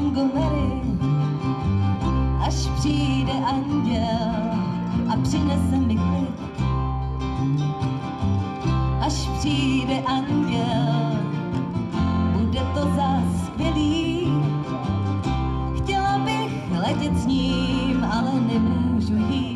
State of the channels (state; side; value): identical; both; correlation 1.00